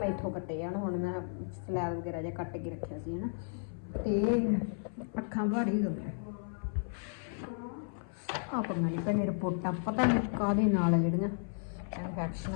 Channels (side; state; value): right; silent; 55 dB below the other